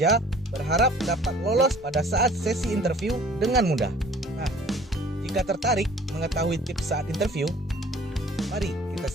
berharap dapat lolos pada saat sesi interview dengan mudah. Nah, jika tertarik mengetahui tips saat interview, mari kita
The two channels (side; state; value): both; normal; correlation 0.51